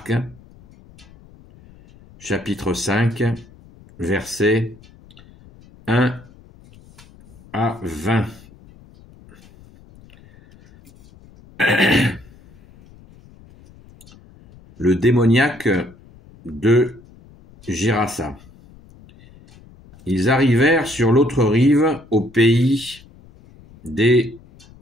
chapitre 5, versets 1 à 20. Le démoniaque de Gérasa. Ils arrivèrent sur l'autre rive, au pays des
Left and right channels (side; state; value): left; noise; rumble, 24 dB below the sound